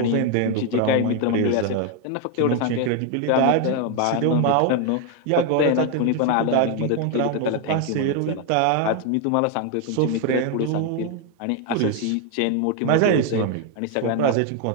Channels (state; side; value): different; both; correlation 0.01